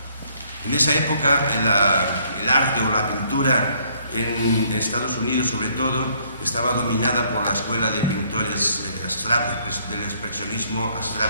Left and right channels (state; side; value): inverted; both; correlation -0.66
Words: En esa época el arte o la pintura en Estados Unidos, sobre todo, estaba dominada por la escuela de pintores abstractos, del expresionismo